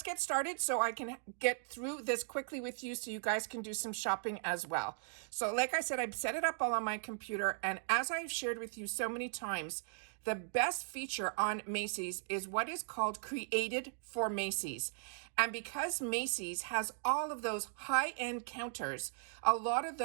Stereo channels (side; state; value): left; silent; digital silence